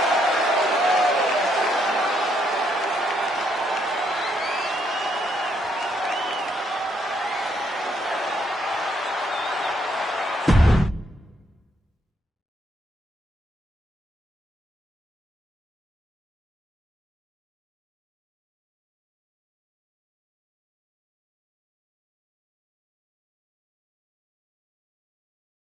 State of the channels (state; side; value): normal; both; correlation 0.74